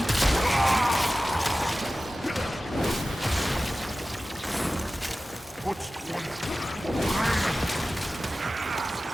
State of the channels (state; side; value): normal; both; correlation 0.96